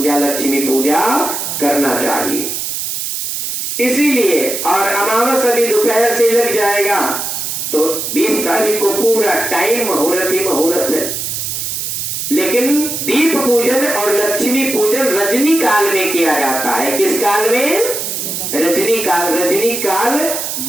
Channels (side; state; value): right; noise; hiss, 4 dB below the sound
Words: लक्ष्मी पूजा करना चाहिए। इसीलिए और अमावस अभी दोपहर से लग जाएगा तो 20 तारीख को पूरा टाइम मुहूर्त ही मुहूर्त है। लेकिन दीप पूजन और लक्ष्मी पूजन रजनी काल में किया जाता है। किस काल में? रजनी काल। रजनी काल